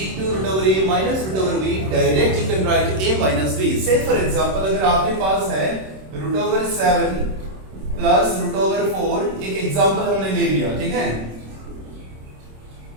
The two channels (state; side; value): late; left; 26 ms